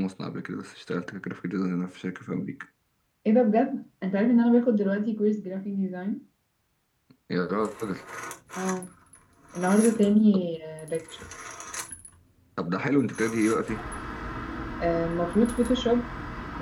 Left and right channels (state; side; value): identical; both; correlation 1.00